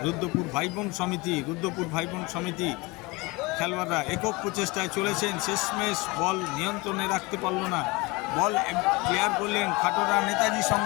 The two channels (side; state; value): right; quieter; 23.3 dB